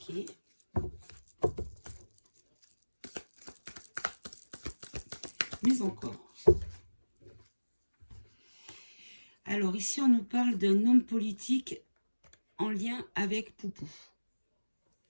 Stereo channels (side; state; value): both; inverted; correlation -1.00